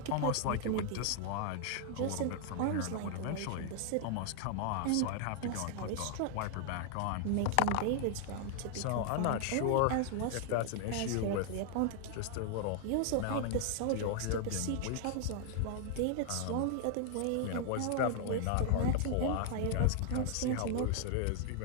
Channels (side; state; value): both; different; correlation 0.00